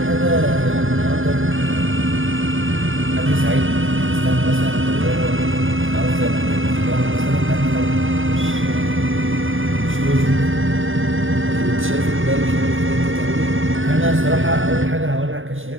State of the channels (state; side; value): late; left; 0.58 ms